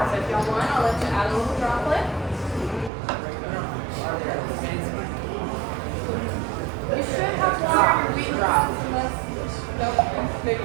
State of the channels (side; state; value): left; drops out; at 2.9 s